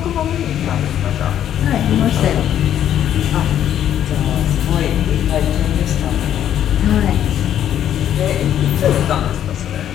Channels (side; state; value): right; quieter; 10.5 dB